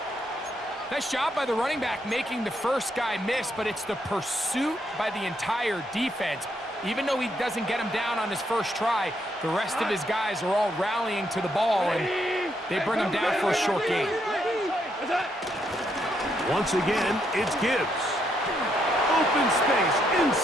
Nice job by the running back making the first guy miss, but it's the pursuit by the entire defense. Even though he doesn't get him down on his first try, the rest of his guys are all rallying to the ball, and they bring him down for a short gain. Once again, it's Gibbs. Open space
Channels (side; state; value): both; normal; correlation 0.76